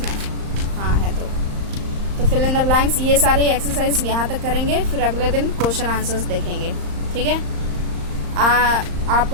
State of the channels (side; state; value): left; late; 35 ms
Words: हाँ है। तो fill in the blanks, ये सारे exercise यहाँ तक करेंगे, फिर अगले दिन क्वेश्चन आंसर्स देखेंगे। ठीक है।